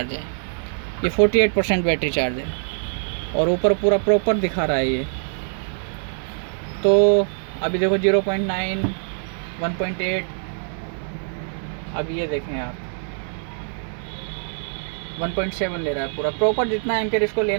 है, ये 48% बैटरी चार्ज है, और ऊपर पूरा प्रॉपर दिखा रहा है ये। तो अभी देखो 0.9, 1.8, अब ये देखें आप 1.7 ले रहा है पूरा प्रॉपर, जितना एम्पियर इसको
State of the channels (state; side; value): silent; left; digital silence